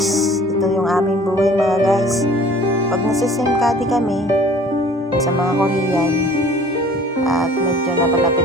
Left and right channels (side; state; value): both; normal; correlation 0.50